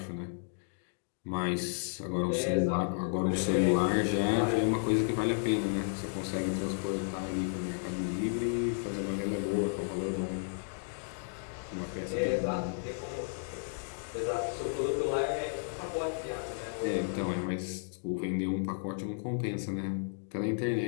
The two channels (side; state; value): right; silent; digital silence